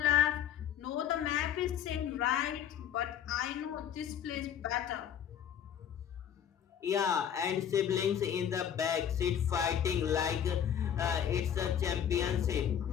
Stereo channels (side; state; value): right; quieter; 9.2 dB